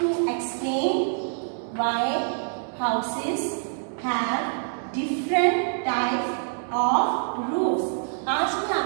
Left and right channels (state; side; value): silent; left; digital silence